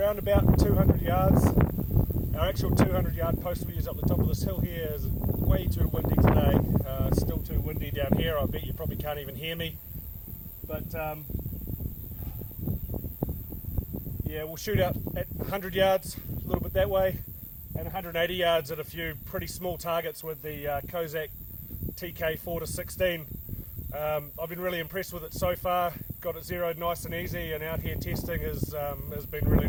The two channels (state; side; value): identical; both; correlation 1.00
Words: about 200 yards. Our actual 200 yard post we use up the top of this hill here is way too windy today. It's still too windy down here. I bet you probably can't even hear me. But yeah, we'll shoot out at 100 yards, a little bit that way, and 180 yards at a few pretty small targets with the Kozac TK 4-16. I've been really impressed with it so far. Got it zeroed nice and easy, and out here testing has been really